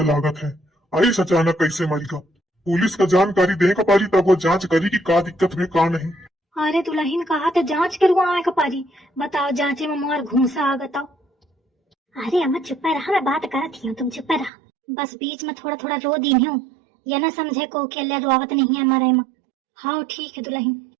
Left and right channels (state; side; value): drops out; left; at 14.5 s